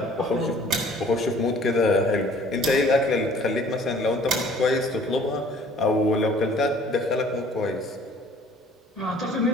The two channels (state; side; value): normal; both; correlation 0.53